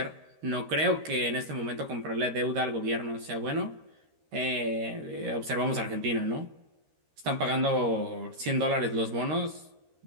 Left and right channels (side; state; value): left; late; 13 ms